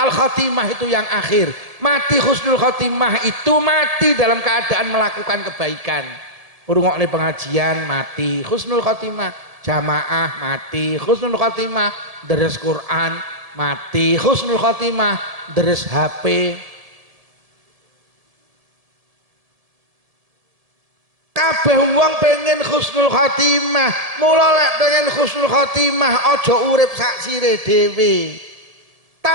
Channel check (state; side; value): late; left; 1.7 ms